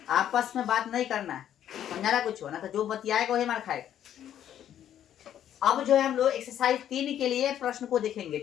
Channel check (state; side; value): quieter; right; 10.6 dB